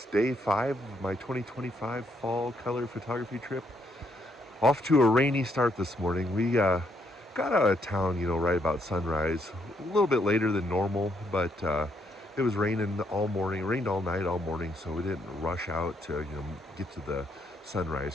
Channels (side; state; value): both; normal; correlation 0.73